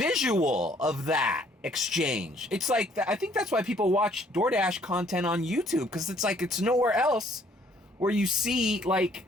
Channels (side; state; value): both; normal; correlation 0.62